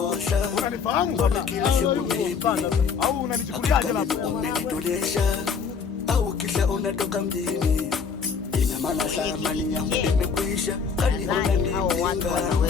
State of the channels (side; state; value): right; quieter; 5.9 dB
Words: Unanifahamu? Au unanichukuliaje labda? Umenitolesha au kisha unatoka mjini. Ina maana thamani yangu imekwisha. Kani unanipinga